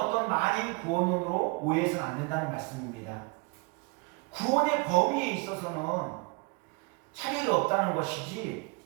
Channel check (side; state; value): left; quieter; 28.3 dB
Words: 만인 구원론으로 오해해서는 안 된다는 말씀입니다. 구원의 범위에 있어서는 차별이 없다는 것이지